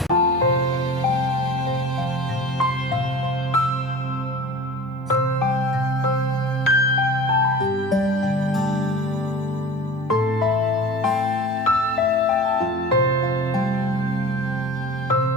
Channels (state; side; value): normal; both; correlation 0.38